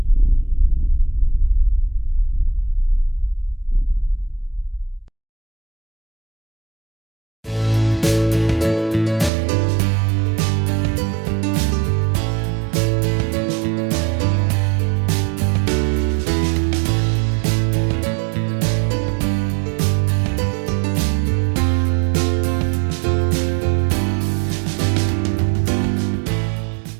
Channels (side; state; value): left; drops out; at 9.3 s